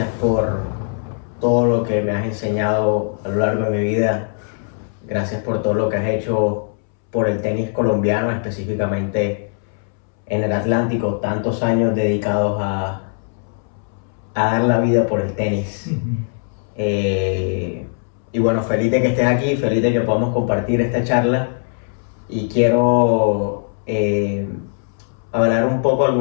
por todo lo que me has enseñado a lo largo de mi vida. Gracias por todo lo que has hecho por el tenis colombiano, específicamente en el Atlántico. Tantos años dedicados a dar la vida por el tenis. Y bueno, feliz de que estés aquí, feliz de que podamos compartir esta charla. Y quiero hablar un poco.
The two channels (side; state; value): right; silent; 66 dB below the other